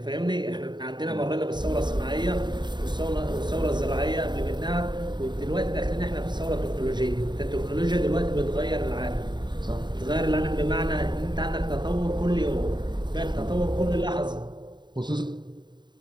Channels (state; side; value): late; left; 0.22 ms